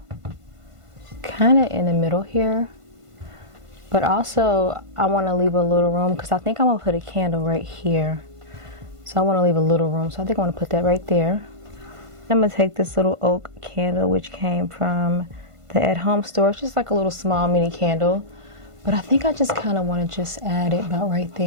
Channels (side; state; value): left; late; 1.5 ms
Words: kind of in the middle here. But also I wanna leave a little room, because I think I'm gonna put a candle right here. So I want to leave a little room. So I think I want to put that right there. I'm going to take this little oak candle, which came from the At Home store. It's just like a little small mini candle. But I think I just kind of want to just add it about right